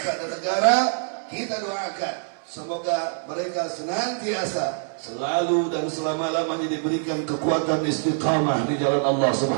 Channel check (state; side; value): silent; left; 62 dB below the other